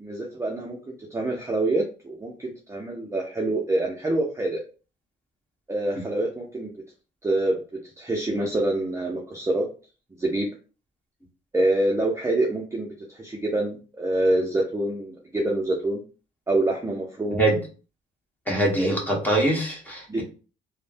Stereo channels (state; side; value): normal; both; correlation 0.72